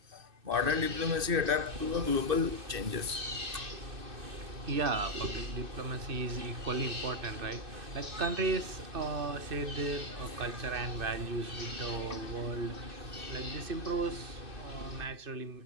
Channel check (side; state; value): left; late; 2.6 ms